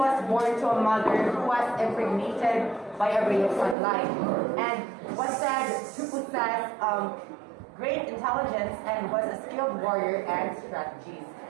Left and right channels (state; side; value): drops out; left; at 3.8 s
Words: born to a mother who was impregnated by a ray of sunlight and was said to possess great intelligence and was a skilled warrior and strategist.